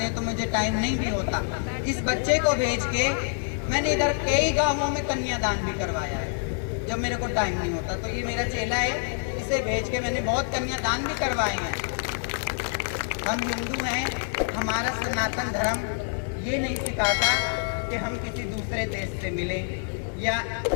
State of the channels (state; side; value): silent; right; 59 dB below the other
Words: हैं तो मुझे टाइम नहीं भी होता। इस बच्चे को भेज के मैंने इधर कई गांवों में कन्यादान भी करवाया है जब मेरे को टाइम नहीं होता। तो ये मेरा चेला है, पैसे भेज के मैंने बहुत कन्यादान भी करवाए हैं। हम हिंदू हैं, हमारा सनातन धर्म ये नहीं सिखाता कि हम किसी दूसरे देश से मिलें या